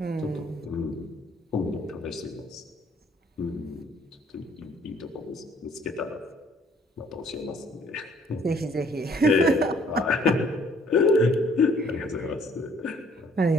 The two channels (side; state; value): both; normal; correlation 0.61